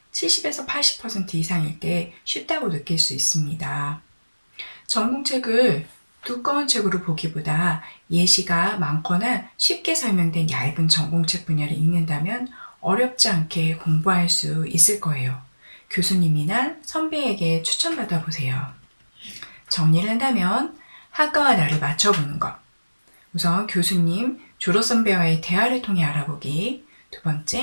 70에서 80% 이상일 때 쉽다고 느낄 수 있습니다. 전공책을 두꺼운 책으로 보기보다 예시가 많거나 쉽게 설명된 얇은 전공책 분야를 읽는다면 어렵지 않게 공부할 수 있을 거예요. 교수님이나 선배에게 추천받아 보세요. 정리를 한다면 학과와 나를 맞춰보는 것. 우선 교수님, 졸업 선배와의 대화를 통해 알아보기. 두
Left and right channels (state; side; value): inverted; both; correlation -1.00